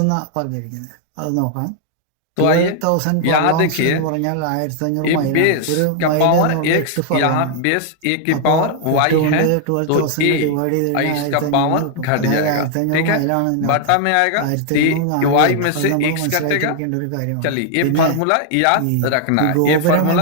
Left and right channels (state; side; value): different; both; correlation 0.00